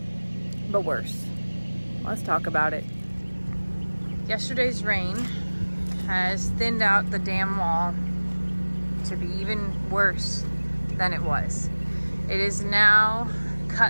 but worse. Let's talk about it. Yesterday's rain has thinned out the dam wall to be even worse than it was. It has now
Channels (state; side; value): inverted; both; correlation -1.00